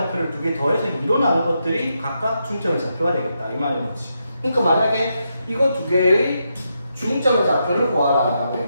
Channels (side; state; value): both; inverted; correlation -0.83